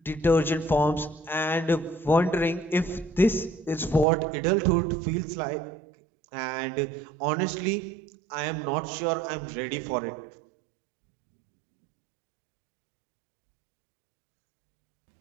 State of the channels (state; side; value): drops out; left; at 4.0 s